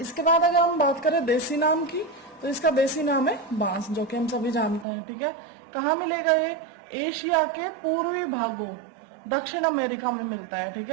बाद अगर हम बात करें देसी नाम की, तो इसका देसी नाम है बांस, जो कि हम सभी जानते हैं। ठीक है, कहाँ मिलेगा ये? एशिया के पूर्वी भागों, दक्षिण अमेरिका में मिलता है। ठीक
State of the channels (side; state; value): left; drops out; at 4.9 s